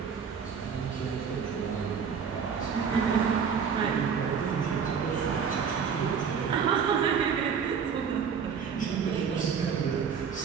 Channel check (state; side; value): quieter; left; 6.7 dB